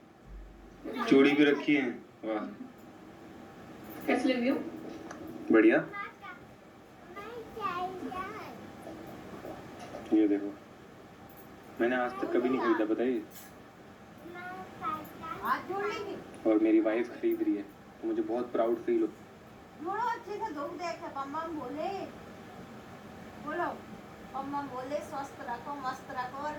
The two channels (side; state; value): both; identical; correlation 1.00